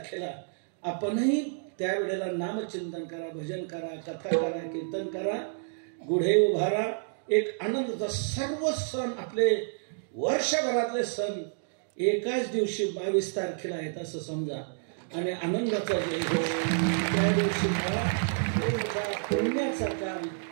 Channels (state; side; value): silent; left; digital silence